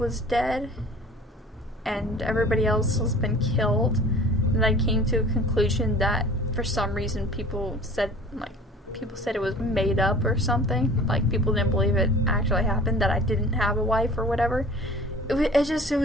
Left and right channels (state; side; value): normal; both; correlation 0.45